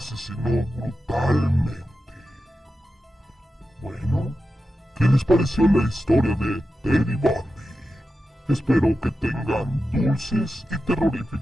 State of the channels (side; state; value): both; normal; correlation 0.91